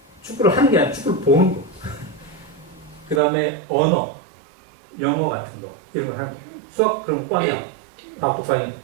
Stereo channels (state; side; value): drops out; left; at 3.2 s